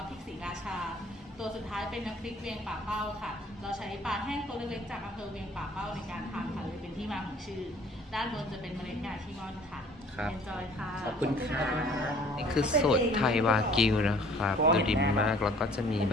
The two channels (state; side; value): normal; both; correlation 0.53